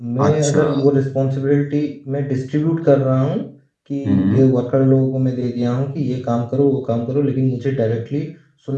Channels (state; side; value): identical; both; correlation 1.00